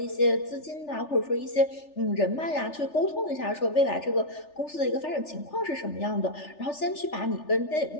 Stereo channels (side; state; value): right; late; 3.4 ms